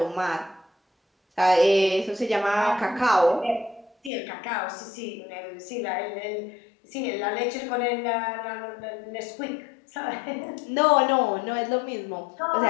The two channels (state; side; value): drops out; right; at 4.1 s